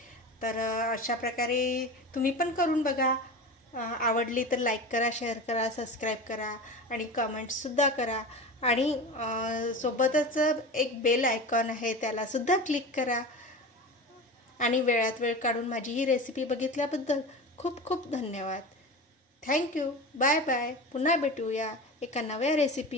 तर अशा प्रकारे तुम्ही पण करून बघा. आवडली तर लाईक करा, शेअर करा, सबस्क्राईब करा आणि कमेंट्ससुद्धा करा. आणि सोबतच एक बेल आयकॉन आहे, त्यालासुद्धा क्लिक करा. आणि वेळात वेळ काढून माझी ही रेसिपी बघितल्याबद्दल खूप खूप धन्यवाद. थँक्यू. Bye bye. पुन्हा भेटूया एका नव्या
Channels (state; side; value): normal; both; correlation 0.30